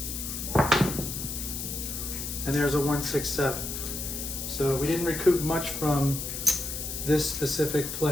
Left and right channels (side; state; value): left; noise; hiss, 5 dB below the sound